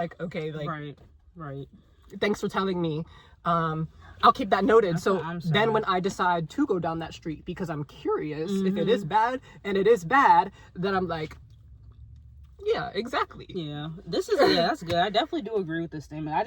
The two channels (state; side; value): identical; both; correlation 1.00